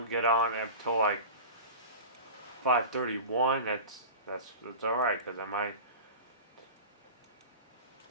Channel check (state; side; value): inverted; both; correlation -0.31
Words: get on until like 5:31, that's alright, because I